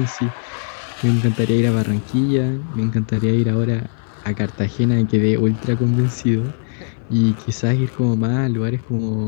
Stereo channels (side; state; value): right; silent; 59 dB below the other